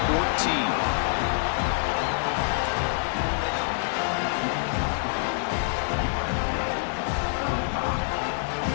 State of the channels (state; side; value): silent; right; 61 dB below the other